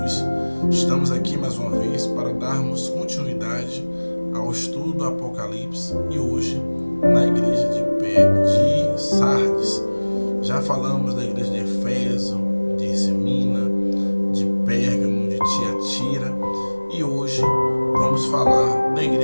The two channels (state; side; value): inverted; both; correlation -1.00